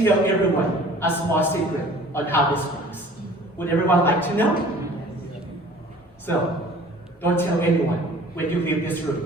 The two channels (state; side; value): normal; both; correlation 0.48